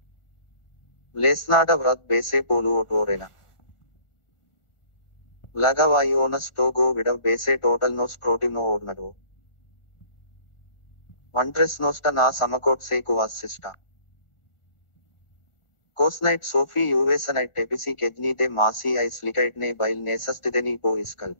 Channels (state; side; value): late; right; 1.4 ms